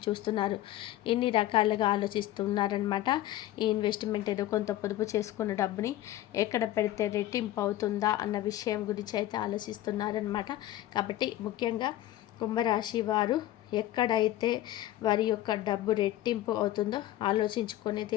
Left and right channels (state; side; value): quieter; right; 14.2 dB